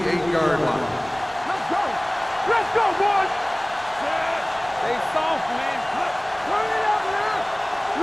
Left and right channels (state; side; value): noise; right; rumble, 28 dB below the sound